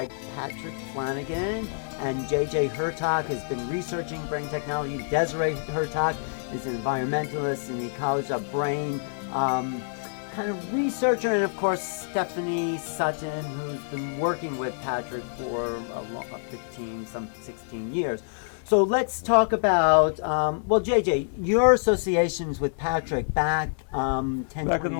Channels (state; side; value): silent; right; digital silence